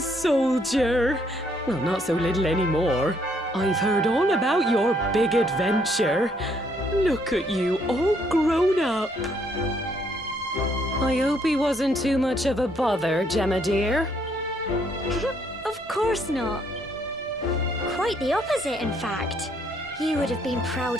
Well, not so little anymore. I've heard all about your big adventure. Look at you, all grown up. I hope he wasn't too much of a bother, Gemma dear. Of course not. Quite the opposite, in fact. You would have been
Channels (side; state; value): both; normal; correlation 0.69